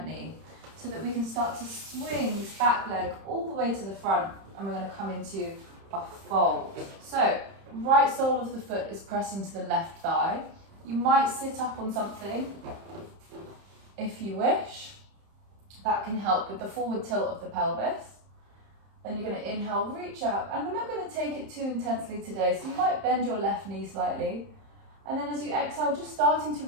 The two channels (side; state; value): left; late; 31 ms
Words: knee. so that we can start to swing this back leg all the way to the front, and we're going to come into a fold. So right sole of the foot is pressing to the left thigh. You might sit up on something if you wish. That can help with the forward tilt of the pelvis. Then you're going to inhale, reach up, and we're not going to take it too intensely today, so you might bend your left knee slightly. And then as you exhale, just starting to